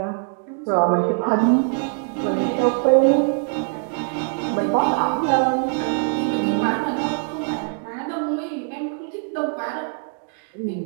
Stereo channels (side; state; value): left; silent; 62 dB below the other